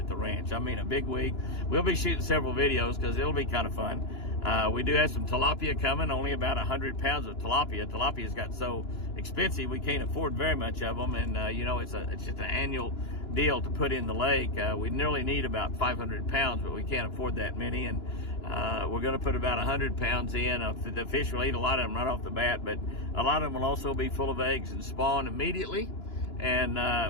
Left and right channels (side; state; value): right; late; 2.9 ms